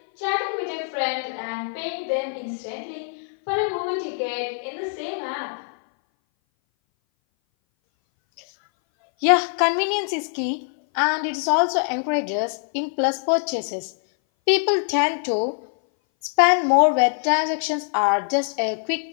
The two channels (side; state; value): right; silent; 59 dB below the other